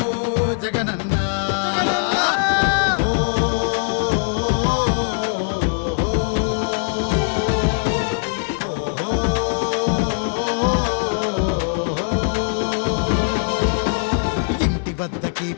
జగనన్న. ఇంటి వద్దకి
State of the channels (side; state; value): right; silent; digital silence